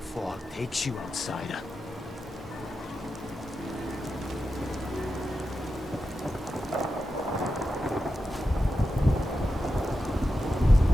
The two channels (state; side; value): normal; both; correlation 0.90